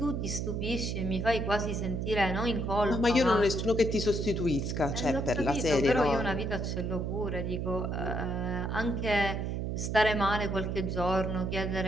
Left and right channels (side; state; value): right; noise; hum, 2 dB below the sound